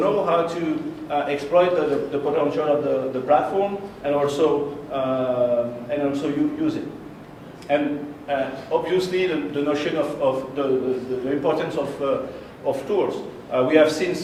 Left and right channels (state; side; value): identical; both; correlation 1.00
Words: how to exploit the potential of the platform, and also use it. And obviously, the notion of the importance of tools. We have seen,